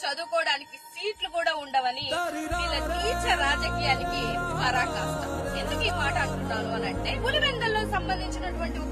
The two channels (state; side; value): identical; both; correlation 1.00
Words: చదువుకోవడానికి సీట్లు కూడా ఉండవని వీళ్ళ నీచ రాజకీయానికి పరాకాష్ట. ఎందుకు ఈ మాట అంటున్నాను అని అంటే, పులివెందల్లో సంబంధించినటువంటి